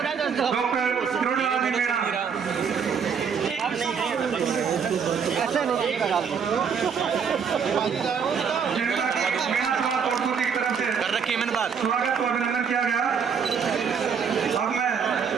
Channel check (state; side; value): quieter; left; 6.6 dB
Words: डॉक्टर त्रिलोकलाल जी मीणा। जिनका मीणा समाज कोटपुतली की तरफ से स्वागत को अभिनंदन किया गया। अब मैं